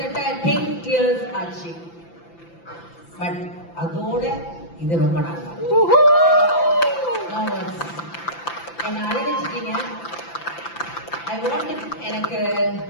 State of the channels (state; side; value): late; right; 5.9 ms